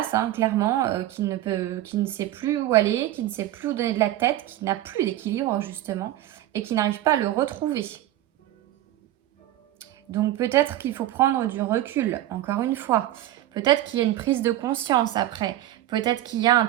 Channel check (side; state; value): left; quieter; 14.0 dB